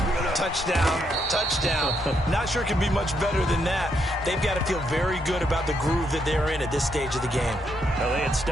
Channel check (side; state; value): both; normal; correlation 0.77